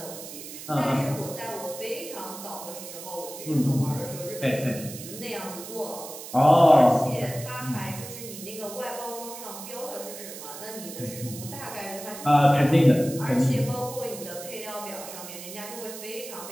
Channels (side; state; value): right; noise; hiss, 12 dB below the sound